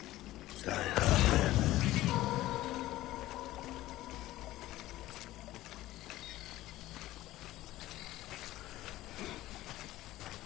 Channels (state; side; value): quieter; right; 16.0 dB